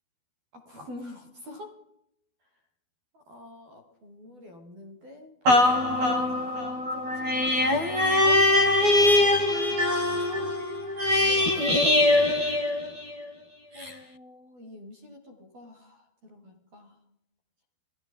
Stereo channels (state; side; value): late; left; 12 ms